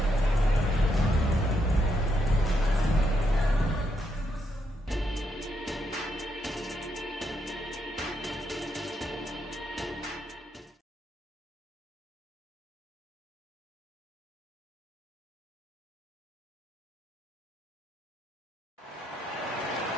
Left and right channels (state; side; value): normal; both; correlation 0.79